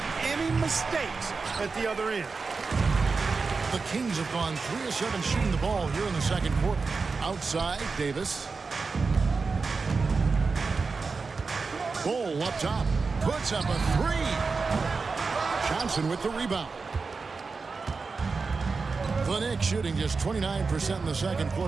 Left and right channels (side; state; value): left; quieter; 4.5 dB